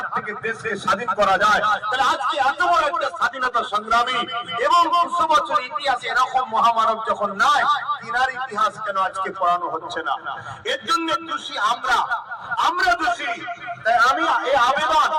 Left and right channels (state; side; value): identical; both; correlation 1.00